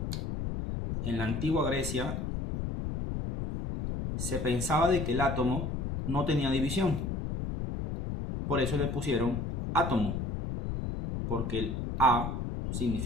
En la antigua Grecia se pensaba de que el átomo no tenía división. Por eso le pusieron átomo, porque el A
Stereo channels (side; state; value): left; noise; rumble, 3 dB below the sound